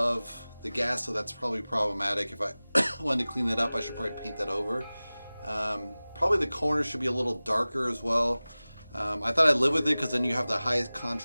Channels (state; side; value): inverted; both; correlation -0.98